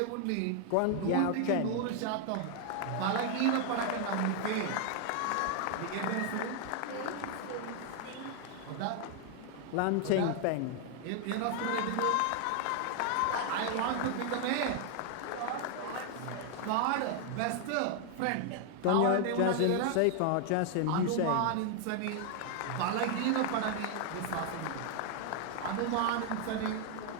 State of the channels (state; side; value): different; both; correlation 0.00